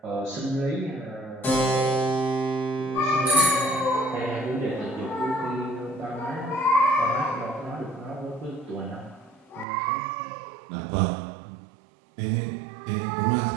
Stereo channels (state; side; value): drops out; left; at 9.7 s